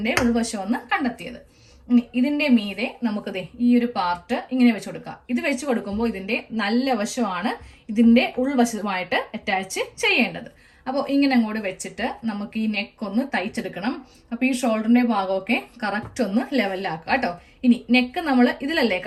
ഉൾവശം എന്ന് കണ്ടെത്തിയത്. ഇതിന്റെ മീതെ നമുക്കത് ഈ ഒരു പാർട്ട് ഇങ്ങനെ വെച്ച് കൊടുക്കാം. ഇത് വെച്ച് കൊടുക്കുമ്പോൾ ഇതിന്റെ നല്ല വശമാണ് ഇതിന്റെ ഉൾവശമായിട്ട് അറ്റാച്ച് ചെയ്യേണ്ടത്. അപ്പോൾ ഇങ്ങനെ അങ്ങോട്ട് വെച്ചിട്ട് നമുക്ക് ഈ നെക്ക് ഒന്ന് തയ്ച്ചെടുക്കണം. അപ്പോൾ ഈ ഷോൾഡറിന്റെ ഭാഗമൊക്കെ കറക്റ്റ് ഒന്ന് ലെവലാക്കുക കേട്ടോ. ഇനി നെക്ക് നമ്മൾ ഇതിലല്ലേ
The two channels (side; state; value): both; identical; correlation 1.00